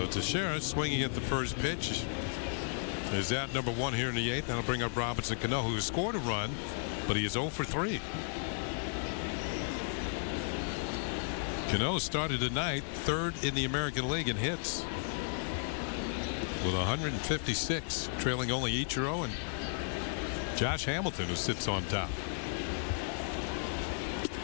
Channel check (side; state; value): right; silent; digital silence